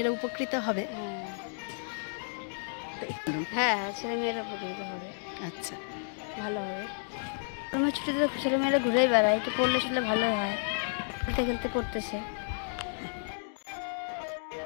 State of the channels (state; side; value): silent; right; digital silence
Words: উপকৃত হবে? হ্যাঁ, ছেলেমেয়েরা উপকৃত হবে। আচ্ছা, ভালো হবে। গরমের ছুটিতে ছেলেমেয়েরা ঘুরেই বেড়ায়, একটু পড়লে শুনলে ভালো হয়। খেলতে খেলতে পড়তেছে।